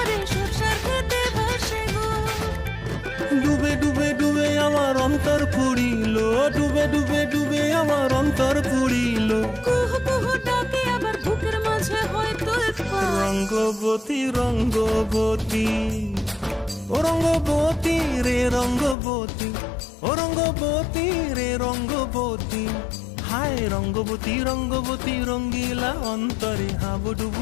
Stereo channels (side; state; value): right; drops out; at 18.9 s